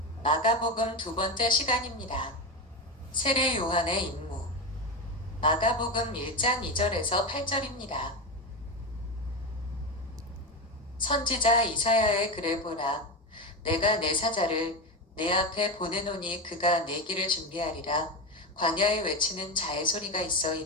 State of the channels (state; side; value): normal; both; correlation 0.17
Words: 마가복음 두 번째 시간입니다. 세례 요한의 임무. 마가복음 1장 2절에서 8절입니다. 선지자 이사야의 글을 보라. 내가 내 사자를 내 앞에 보내노니 그가 내 길을 준비하리라. 광야에 외치는 자의 소리가 있어